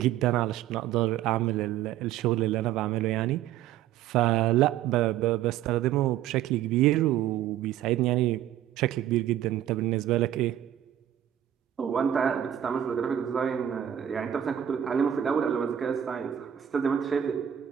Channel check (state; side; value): quieter; left; 11.1 dB